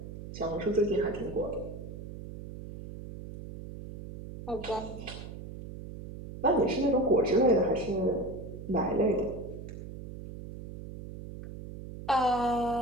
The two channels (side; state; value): right; noise; hum, 11 dB below the sound